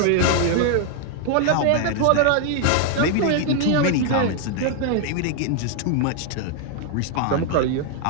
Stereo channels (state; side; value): different; both; correlation 0.00